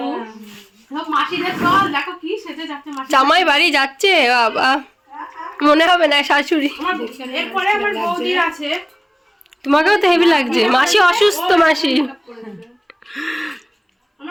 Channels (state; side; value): identical; both; correlation 1.00